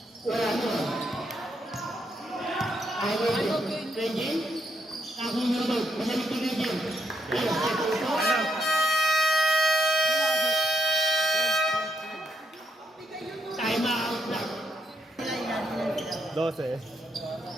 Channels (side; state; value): both; normal; correlation 0.79